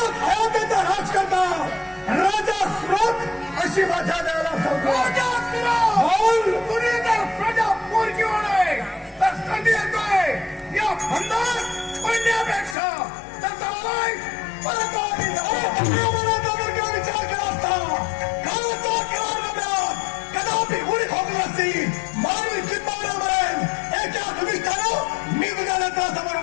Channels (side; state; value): right; drops out; at 12.8 s